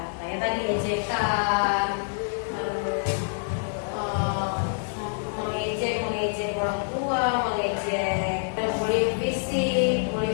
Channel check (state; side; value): silent; right; 61 dB below the other